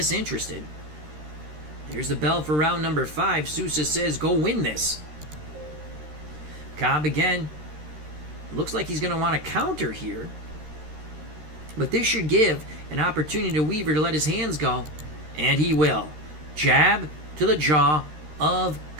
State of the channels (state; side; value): late; left; 13 ms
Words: Here's the bell for round number 5. Sousa says, go win this. Cobb again. Looks like he's going to want to counter here. But this should give an opportunity to Weaver to let his hands go. And he will. Jab to the jaw of